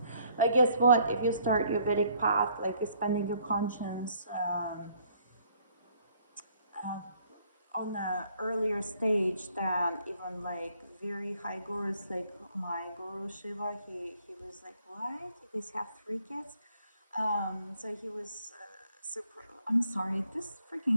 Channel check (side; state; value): both; inverted; correlation -0.64